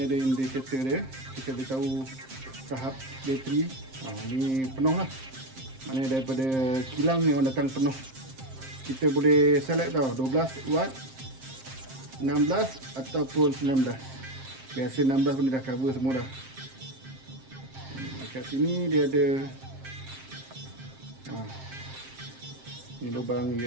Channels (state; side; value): late; left; 7.6 ms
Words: ada indikator dia, kita boleh tahu tahap bateri. Ni penuh lah, maknanya daripada kilang memang datang penuh. Kita boleh select tau, 12 watt, 16 ataupun 19. Biasa 16 pun dia dah cover semua dah. Dekat sini dia ada ni lubang